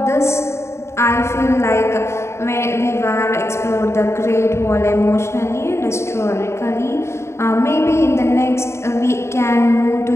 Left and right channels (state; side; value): late; right; 0.13 ms